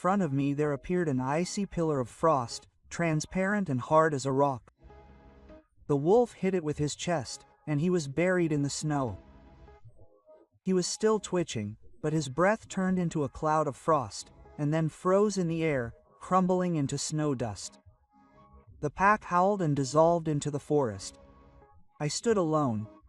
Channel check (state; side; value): identical; both; correlation 1.00